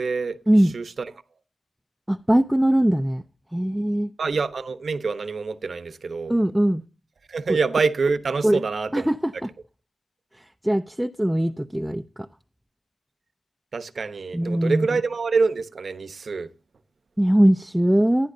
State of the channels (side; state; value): both; normal; correlation 0.98